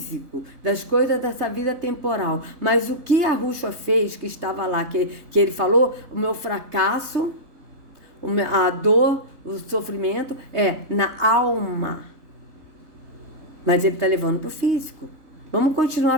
das coisas dessa vida temporal. Mas o que Arrucha fez, que estava lá, que ele falou, o meu fracasso, a dor, o sofrimento, é na alma. Mas ele está levando para o físico. Vamos continuar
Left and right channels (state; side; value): late; left; 3.2 ms